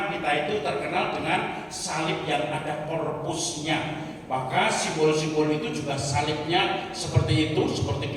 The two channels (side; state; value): both; identical; correlation 1.00